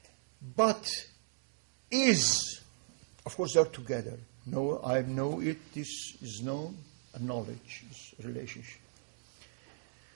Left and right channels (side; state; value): left; silent; digital silence